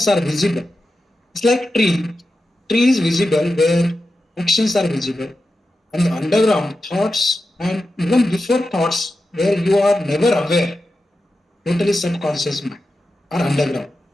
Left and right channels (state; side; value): normal; both; correlation 0.91